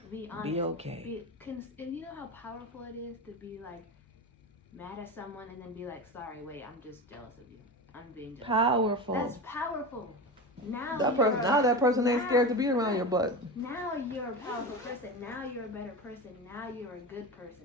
Be honest. Be okay. And you know how powerful it is to be like mad at someone and then be like, sorry, wait, I'm just jealous of you. I'm being jealous. Powerful. That's powerful. Now That you're person. Now that person ain't now- scared to be around your butt. Now you're a powerful person. Now you're a better person. Now you're a good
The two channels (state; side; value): normal; both; correlation 0.24